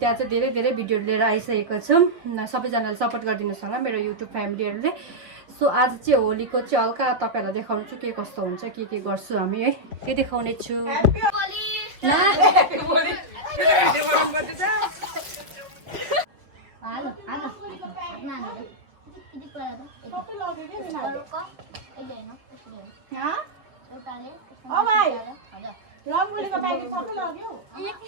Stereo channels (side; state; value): left; late; 6.0 ms